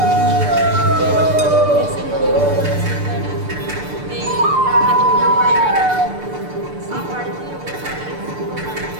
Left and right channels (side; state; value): left; late; 6.8 ms